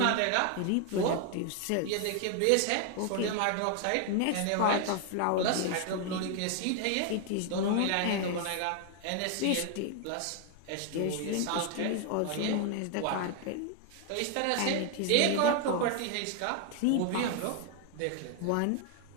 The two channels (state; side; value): different; both; correlation 0.00